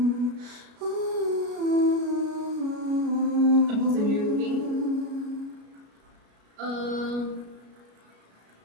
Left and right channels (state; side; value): late; left; 33 ms